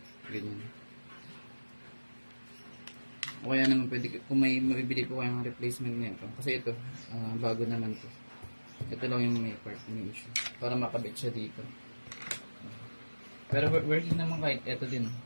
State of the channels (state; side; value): inverted; both; correlation -1.00